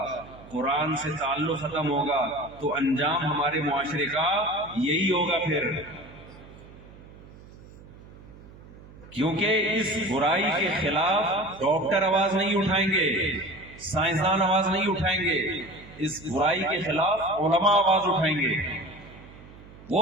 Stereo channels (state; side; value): noise; right; hum, 20 dB below the sound